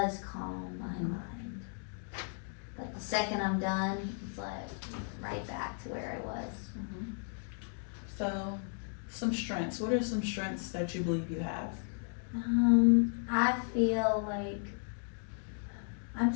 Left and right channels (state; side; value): silent; right; 54 dB below the other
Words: calm my mind. Like the second I'm done, it's like right back to where I was. So, some strengths. What are some strengths that you believe you have? I feel like I'm